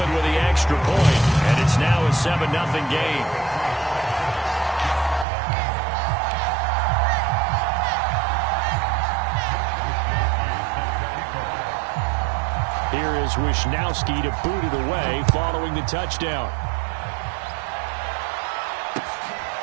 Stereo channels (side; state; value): left; drops out; at 5.2 s